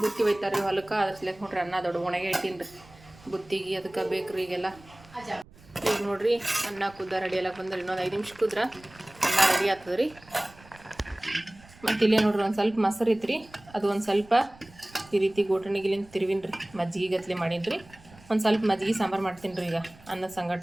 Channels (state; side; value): noise; right; rumble, 24 dB below the sound